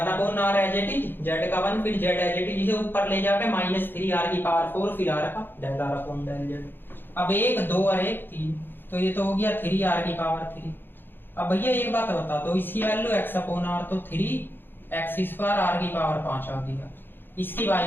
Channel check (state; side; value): late; right; 0.098 ms